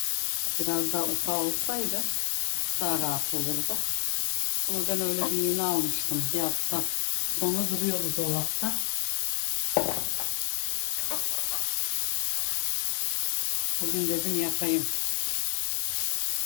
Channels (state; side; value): silent; right; digital silence